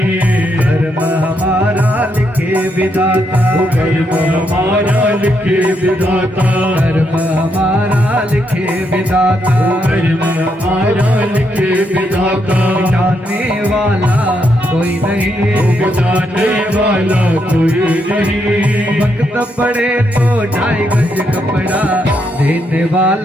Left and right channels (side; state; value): both; normal; correlation 0.78